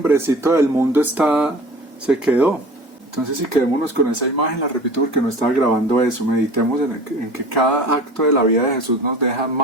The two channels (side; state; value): both; normal; correlation 0.41